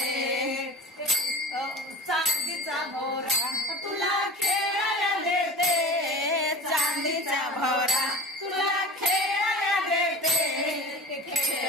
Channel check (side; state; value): both; normal; correlation 0.34